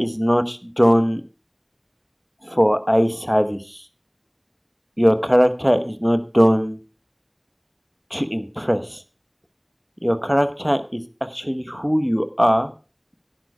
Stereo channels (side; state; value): both; identical; correlation 1.00